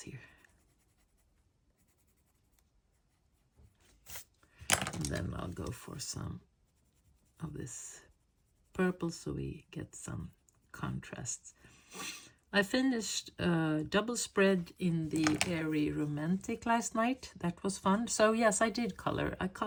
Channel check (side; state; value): both; identical; correlation 1.00